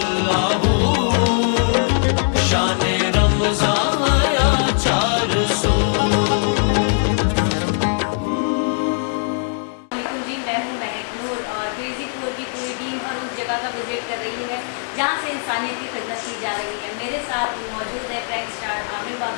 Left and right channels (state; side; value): silent; right; 65 dB below the other